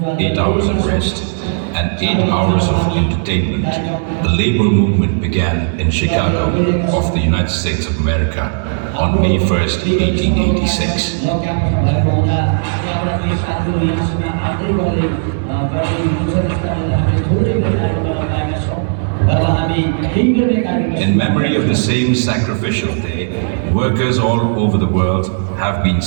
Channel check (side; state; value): left; silent; digital silence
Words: 8 hours of rest, and 8 hours of entertainment, the labor movement began in Chicago of the United States of America on May 1st, 1886. In memory of the same sacrificial day, workers all over the world have been